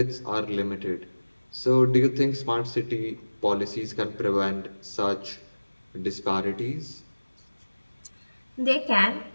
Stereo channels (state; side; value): inverted; both; correlation -1.00